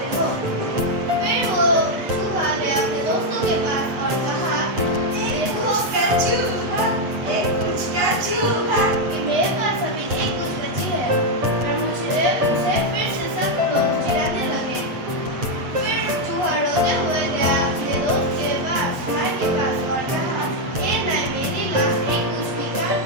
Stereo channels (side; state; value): left; late; 8.0 ms